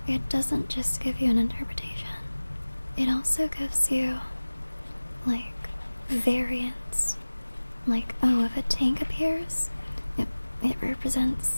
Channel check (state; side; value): inverted; both; correlation -1.00